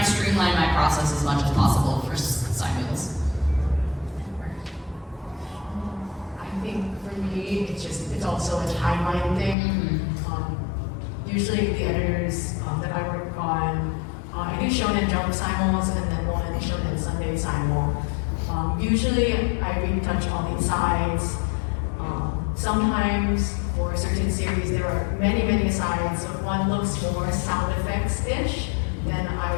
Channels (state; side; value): drops out; right; at 9.6 s